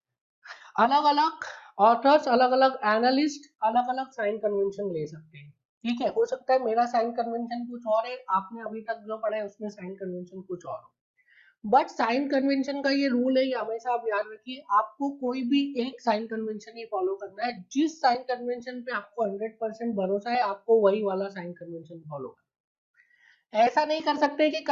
अलग अलग authors, अलग अलग analyst अलग अलग sign convention ले सकते हैं। ठीक है, हो सकता है मेरा साइन कन्वेंशन कुछ और है, आपने अभी तक जो पढ़ा है उसमें साइन कन्वेंशन कुछ और हो। बट साइन कन्वेंशन का ये रूल है, ये हमेशा आप याद रखिए, आपको कोई भी एक साइन कन्वेंशन ही फॉलो करना है। जिस साइन कन्वेंशन पे आपको 100% भरोसा है आपको वही वाला साइन कन्वेंशन फॉलो करना। ऐसा नहीं कर सकते कि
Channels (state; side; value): identical; both; correlation 1.00